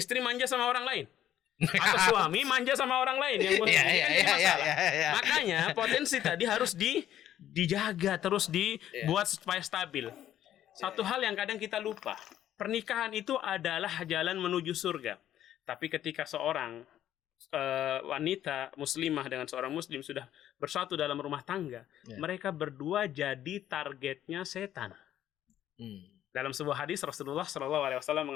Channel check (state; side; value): quieter; right; 11.7 dB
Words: manja sama orang lain. Atau suami manja sama orang lain yang ini kan jadi masalah. Makanya potensi tadi harus dijaga, terus dibuat supaya stabil. Satu hal yang kadang kita lupa, pernikahan itu adalah jalan menuju surga. Tapi ketika seorang wanita muslimah dengan seorang muslim sudah bersatu dalam rumah tangga, mereka berdua jadi targetnya setan. Dalam sebuah hadis Rasulullah SAW